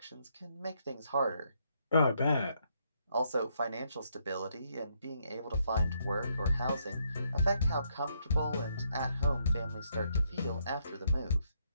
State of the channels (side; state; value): both; inverted; correlation -0.74